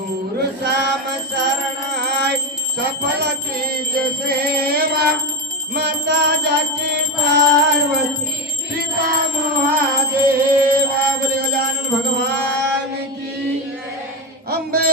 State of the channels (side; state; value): both; normal; correlation 0.15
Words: श्याम शरण आय सफल कीज सेवा माता जाकी पार्वती पिता महादेवा बोले गजानन भगवान की